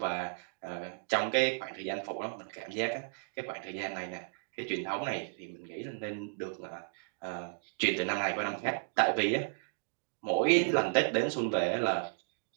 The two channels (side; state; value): left; silent; digital silence